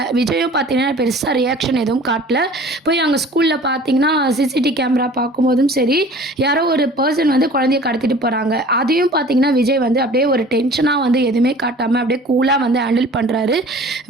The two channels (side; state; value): both; normal; correlation 0.46